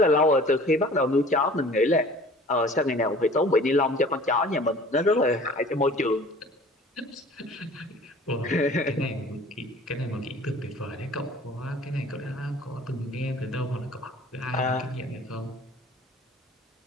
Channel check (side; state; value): both; normal; correlation 0.47